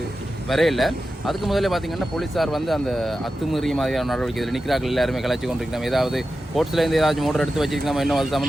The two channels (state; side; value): normal; both; correlation 0.92